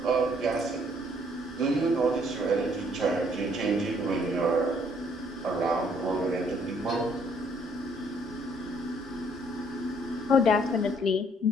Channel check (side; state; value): both; normal; correlation 0.64